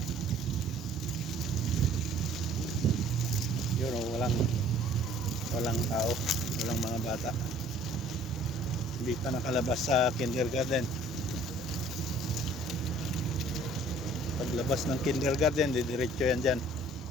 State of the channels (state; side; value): normal; both; correlation 0.54